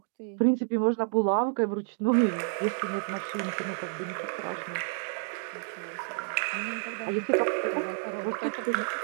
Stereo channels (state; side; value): silent; left; digital silence